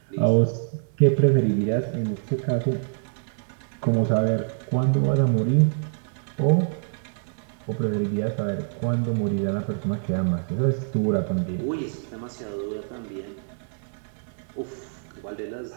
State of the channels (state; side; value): silent; left; digital silence